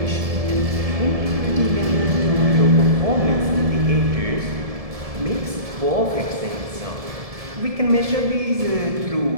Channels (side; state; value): left; late; 1.7 ms